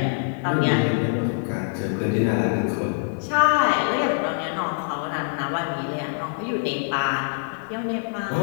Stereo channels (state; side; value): silent; right; digital silence